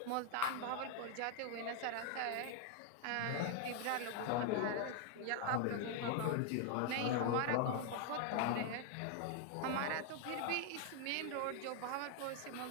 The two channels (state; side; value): different; both; correlation 0.00